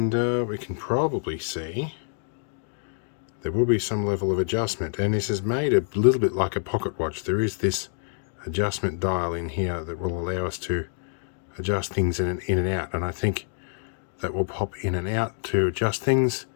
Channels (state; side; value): silent; right; digital silence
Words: we can probably see there will be some level of adjustment. And this is made a little bit like a pocket watch. There is this adjustment dial in here that will allow us to adjust things in and out. And I think that will pop in and out to adjust things.